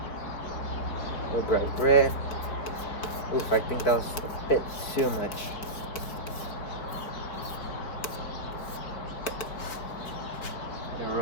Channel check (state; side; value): late; right; 4.5 ms